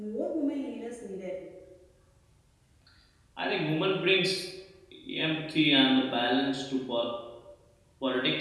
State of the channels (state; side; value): identical; both; correlation 1.00